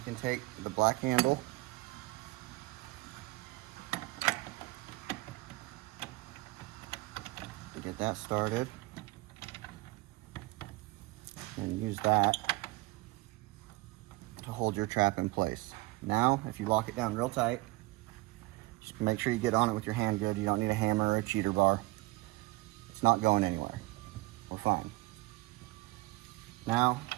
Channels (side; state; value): left; quieter; 22.1 dB